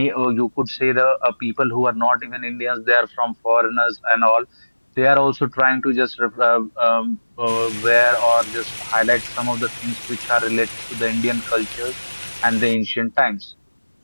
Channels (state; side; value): inverted; both; correlation -1.00